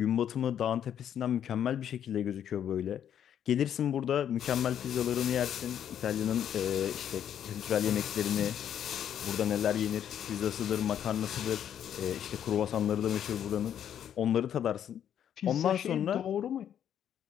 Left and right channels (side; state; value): right; quieter; 9.6 dB